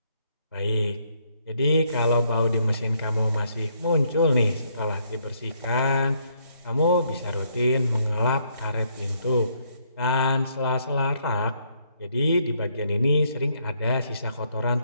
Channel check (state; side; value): inverted; both; correlation -0.71